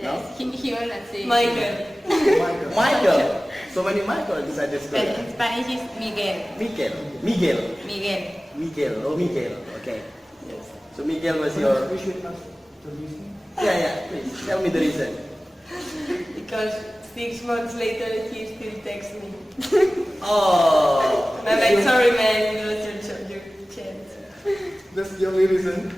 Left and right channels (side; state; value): both; normal; correlation 0.97